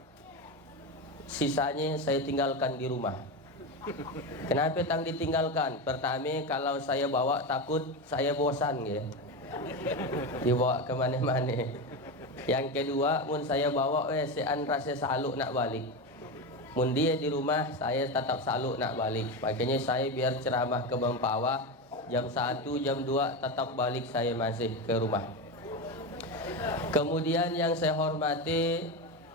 Sisanya saya tinggalkan di rumah. Kenapa tang ditinggalkan? Pertama, kalau saya bawa takut saya bosan ya. Dibawa ke mana-mana. Yang kedua, mun saya bawa sean rasa saluk nak balik. Mun dia di rumah, saya tetap saluk nak balik. Makanya saya biar ceramah ke Bampawa jam 1, jam 2 tetap balik saya masih ke rumah. Kemudian yang saya hormati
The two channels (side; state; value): both; normal; correlation 0.17